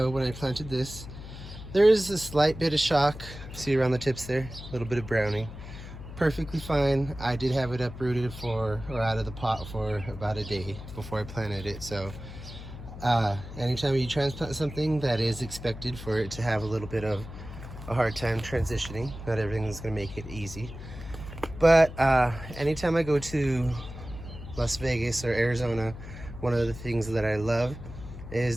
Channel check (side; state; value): left; noise; hum, 12 dB below the sound